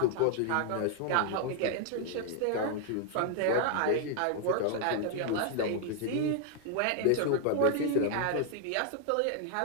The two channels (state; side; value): different; both; correlation 0.00